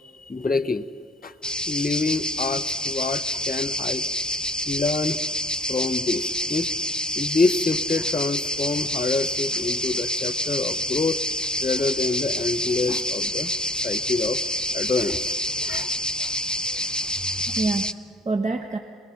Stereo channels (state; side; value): normal; both; correlation 0.50